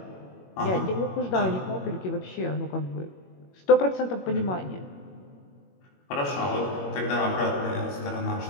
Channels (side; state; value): right; late; 21 ms